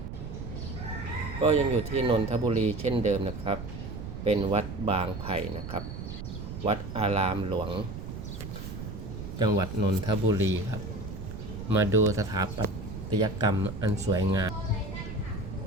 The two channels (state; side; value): noise; right; rumble, 8 dB below the sound